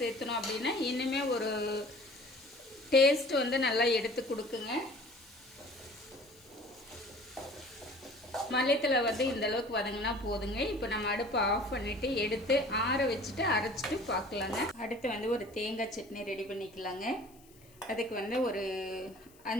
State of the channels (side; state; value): left; noise; hiss, 27 dB below the sound